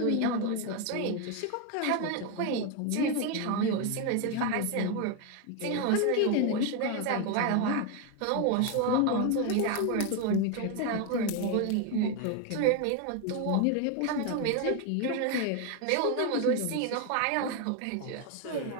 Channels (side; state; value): both; different; correlation 0.01